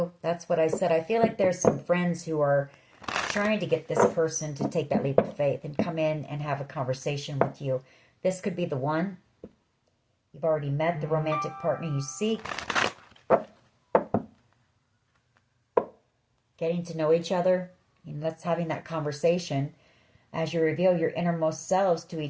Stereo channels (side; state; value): both; identical; correlation 1.00